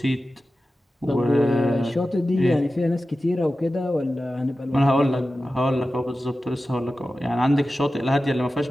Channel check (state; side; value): normal; both; correlation 0.94